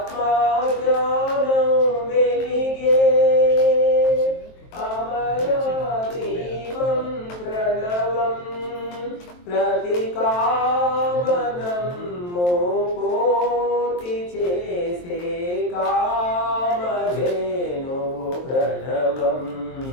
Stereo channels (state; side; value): late; right; 23 ms